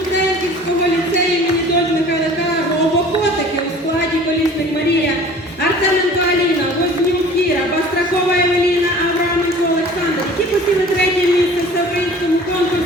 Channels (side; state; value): both; normal; correlation 0.46